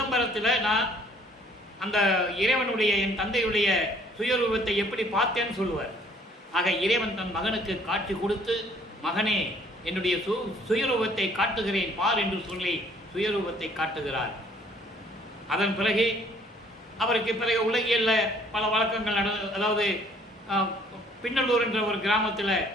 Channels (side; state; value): both; normal; correlation 0.59